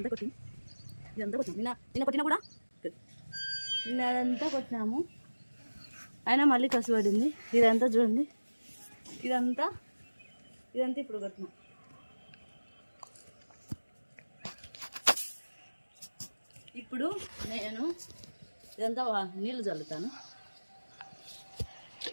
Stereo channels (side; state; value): both; inverted; correlation -1.00